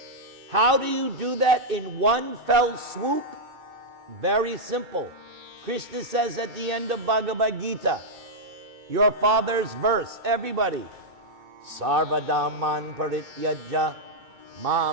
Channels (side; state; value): left; late; 2.6 ms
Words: How do you do that in one fell swoop? Very simple. Krishna says at the end of Bhagavad Gita, your father's verse, everybody, Sarvadaman parityajya